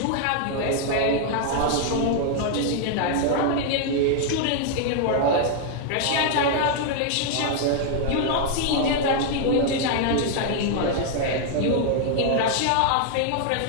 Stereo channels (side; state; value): both; different; correlation 0.00